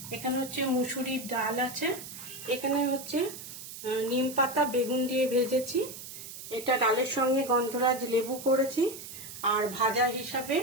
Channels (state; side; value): noise; right; hiss, 12 dB below the sound